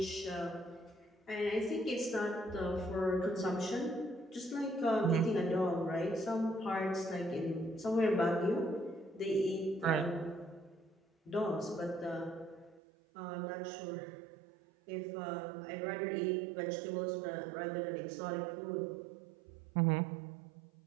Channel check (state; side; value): drops out; left; at 12.8 s